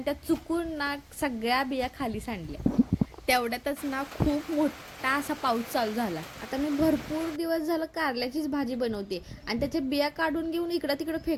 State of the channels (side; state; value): both; identical; correlation 1.00